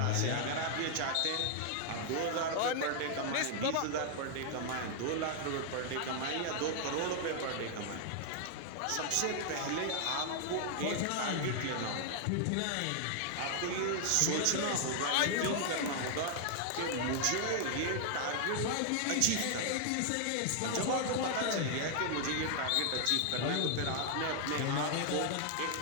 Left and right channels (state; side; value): different; both; correlation 0.00